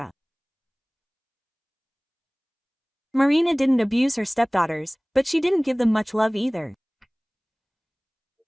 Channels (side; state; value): both; identical; correlation 1.00